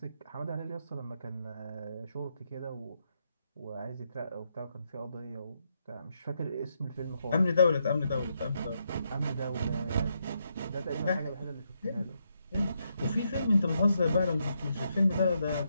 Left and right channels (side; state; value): both; inverted; correlation -0.79